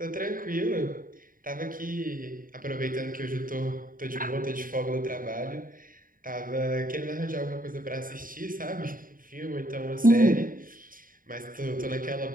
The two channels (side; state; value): left; late; 0.40 ms